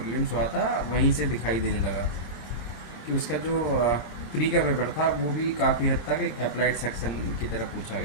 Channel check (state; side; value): late; right; 26 ms